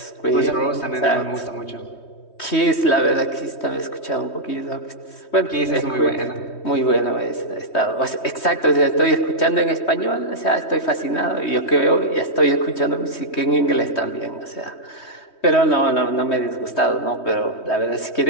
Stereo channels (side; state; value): right; late; 3.2 ms